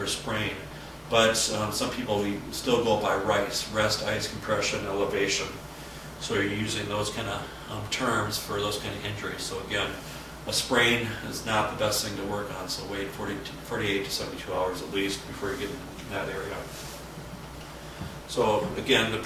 a sprain. But some people, we still go by RICE, rest, ice, compression, elevation. So you're using those kind of terms for those kind of injuries. So again, a sprain is not the best thing to work on, so wait 48 to 72 hours at least before you get in that area. So again, the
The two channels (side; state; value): both; identical; correlation 1.00